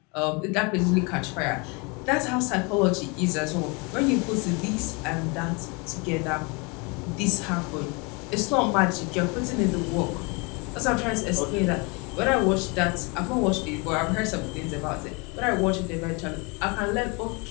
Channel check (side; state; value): right; quieter; 30.0 dB